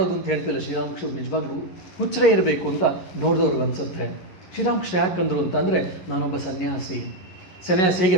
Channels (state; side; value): late; right; 11 ms